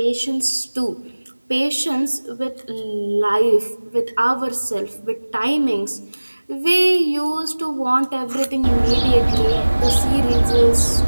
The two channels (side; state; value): both; inverted; correlation -1.00